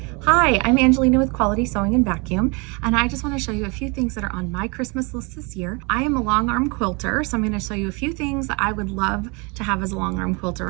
Hi, I'm Angelina with Quality Sewing and Vacuum, and I just want to show you a few things that are on my Christmas list this year. I am a long arm quilter, so I'm going to show you a few things that I would love to have as a long arm quilter,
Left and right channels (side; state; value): left; quieter; 30.0 dB